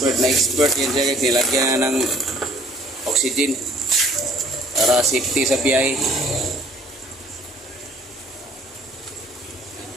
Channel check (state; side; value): normal; both; correlation 0.57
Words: expert yan siya guys. Nilagyan ng oxygen para safety sa biyahe.